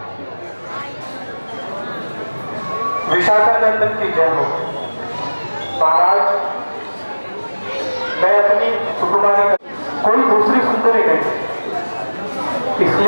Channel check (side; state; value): both; inverted; correlation -1.00